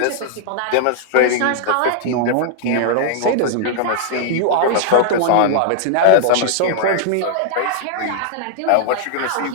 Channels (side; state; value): both; different; correlation -0.01